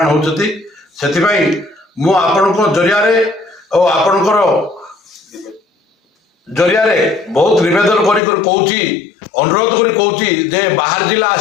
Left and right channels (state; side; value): drops out; right; at 8.2 s